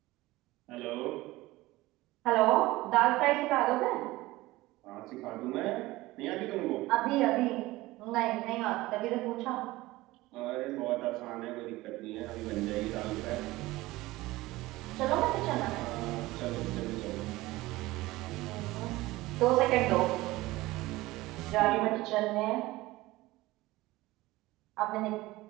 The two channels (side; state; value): left; quieter; 18.9 dB